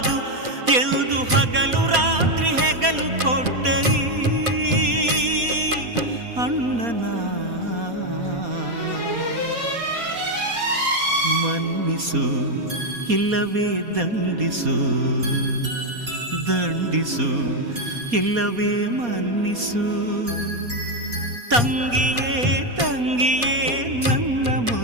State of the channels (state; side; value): late; left; 4.2 ms